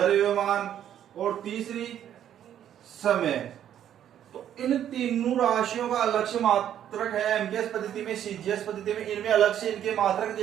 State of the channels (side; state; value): left; quieter; 10.4 dB